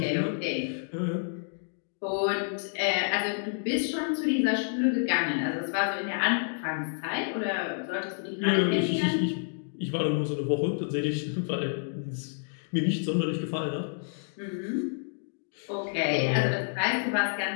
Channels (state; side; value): silent; right; digital silence